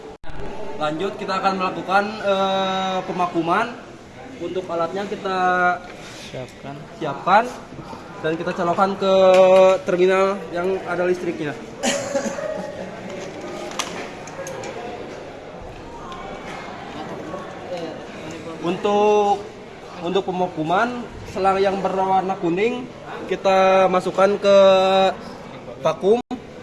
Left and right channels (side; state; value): both; identical; correlation 1.00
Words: Lanjut, kita akan melakukan pemakuman. Untuk alatnya kita siapkan dan kita colokkan ke terminal yang ada listriknya. Untuk pemakuman, selang yang berwarna kuning kita masukkan ke vakum.